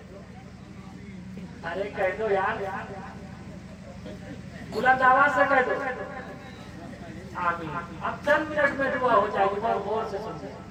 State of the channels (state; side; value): identical; both; correlation 1.00